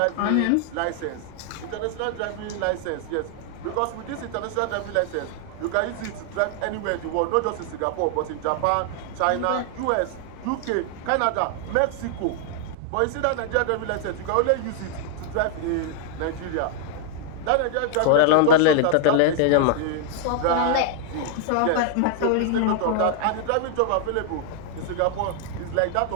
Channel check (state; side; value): different; both; correlation 0.00